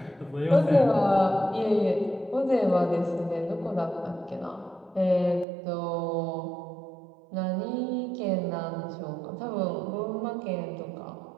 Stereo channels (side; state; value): left; drops out; at 5.5 s